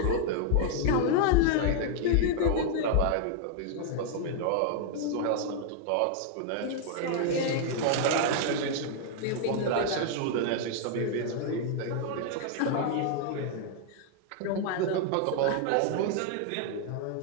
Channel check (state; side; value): different; both; correlation 0.00